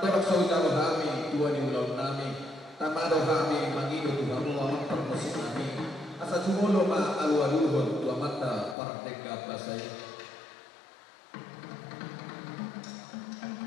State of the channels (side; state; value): right; drops out; at 8.8 s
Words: saudara kami tua di ulon nami tamado kami mangido tuhamu amat permusim nami asa sumulo ma alualuhon tua mata parteka basay.